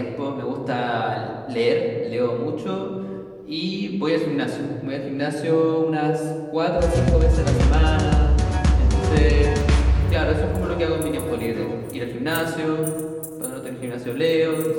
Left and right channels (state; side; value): identical; both; correlation 1.00